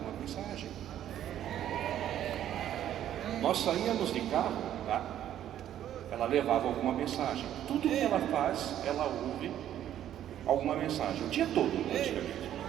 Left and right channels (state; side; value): quieter; left; 11.3 dB